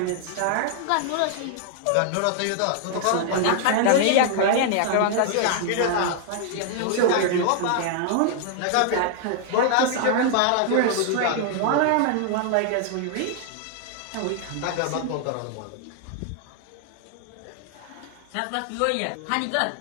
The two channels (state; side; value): different; both; correlation 0.00